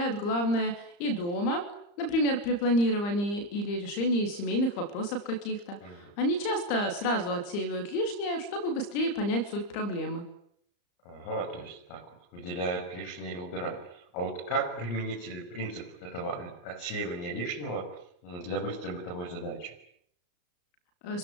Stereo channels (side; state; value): right; late; 35 ms